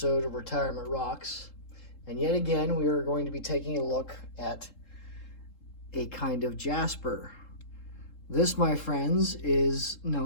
of Retirement Rocks. And yet again, we are going to be taking a look at a kind of jasper. This, my friends, is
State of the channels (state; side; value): late; right; 3.7 ms